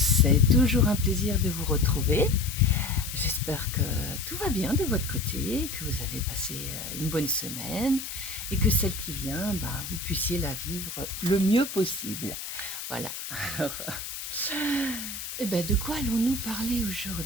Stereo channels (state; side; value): noise; left; hiss, 8 dB below the sound